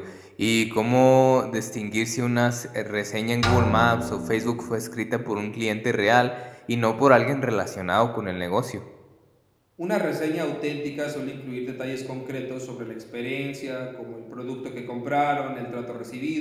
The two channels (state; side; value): identical; both; correlation 1.00